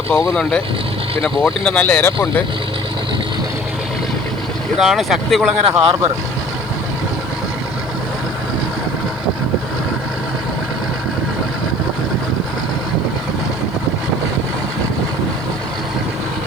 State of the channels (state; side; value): noise; right; hiss, 29 dB below the sound